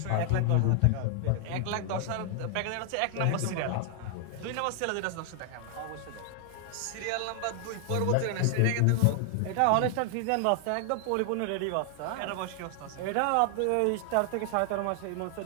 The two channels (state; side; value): different; both; correlation 0.00